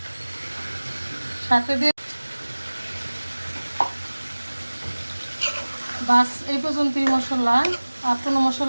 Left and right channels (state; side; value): inverted; both; correlation -1.00